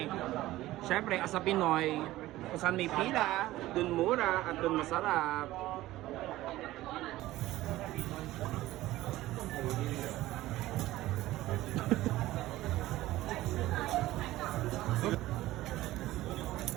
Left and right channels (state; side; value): quieter; left; 16.4 dB